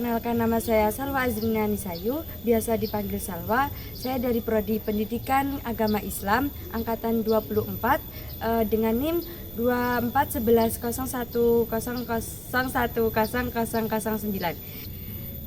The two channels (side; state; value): right; noise; rumble, 19 dB below the sound